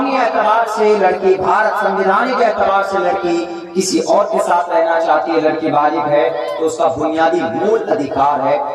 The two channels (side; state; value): both; identical; correlation 1.00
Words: اعتبار سے لڑکی, بھارت سنویدھان کے اعتبار سے لڑکی کسی اور کے ساتھ رہنا چاہتی ہے. لڑکی بالغ ہے تو اس کا بنیادی مول ادھیکار ہے,